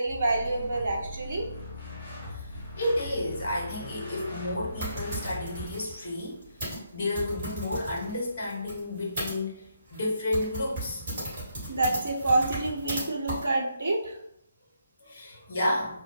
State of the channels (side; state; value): both; inverted; correlation -0.77